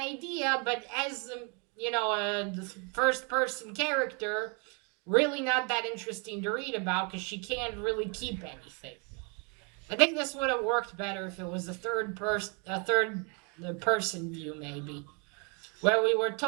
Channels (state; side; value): quieter; left; 34.5 dB